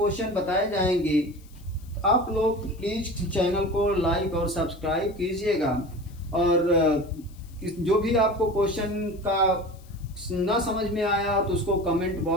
बताए जाएंगे। आप लोग प्लीज चैनल को लाइक और सब्सक्राइब कीजिएगा, और जो भी आपको क्वेश्चन का ना समझ में आया तो उसको कमेंट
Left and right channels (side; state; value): left; noise; hiss, 27 dB below the sound